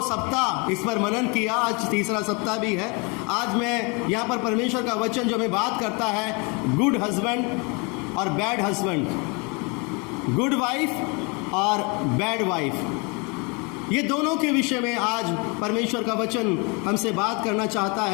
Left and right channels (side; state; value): right; quieter; 31.0 dB